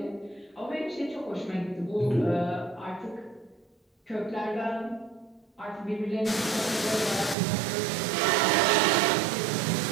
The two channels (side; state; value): left; drops out; at 7.4 s